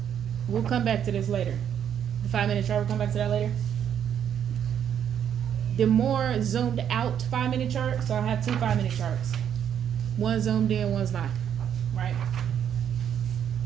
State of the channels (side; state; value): left; quieter; 9.0 dB